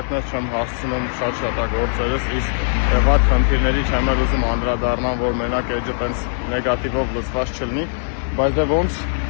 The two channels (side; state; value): right; silent; digital silence